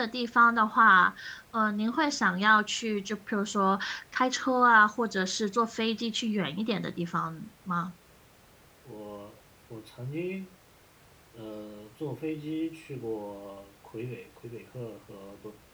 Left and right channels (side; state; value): both; identical; correlation 1.00